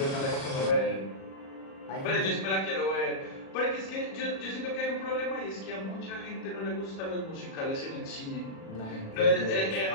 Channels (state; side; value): late; right; 37 ms